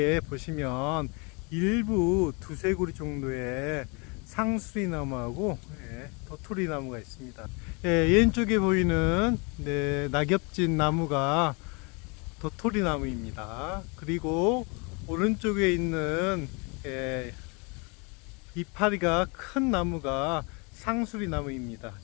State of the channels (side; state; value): right; quieter; 31.4 dB